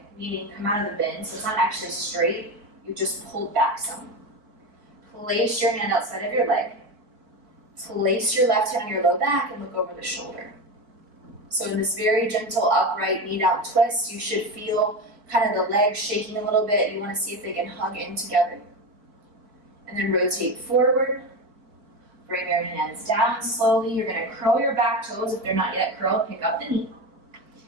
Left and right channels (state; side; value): late; left; 4.6 ms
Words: meaning come out of the bend, so it's not actually straight, you just pulled back some. Place your hand outside of your leg. Place your left hand on your low back and look over the shoulder. So in this very gentle upright knee down twist, you should feel kind of the legs shaking a little bit. You want to see if they can hug in together. And then rotate forward. Bring your hands down slowly. You're going to curl your back toes. If they're not yet curled, pick up the knee.